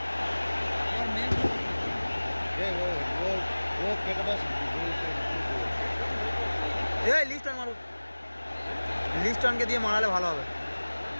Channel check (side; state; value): both; inverted; correlation -1.00